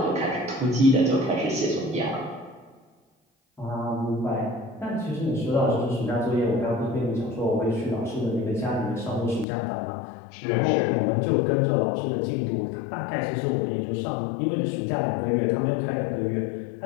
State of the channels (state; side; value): drops out; right; at 9.5 s